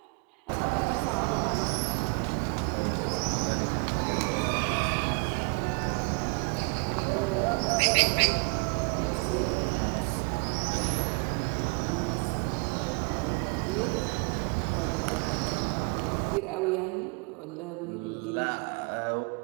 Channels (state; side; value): quieter; left; 35.2 dB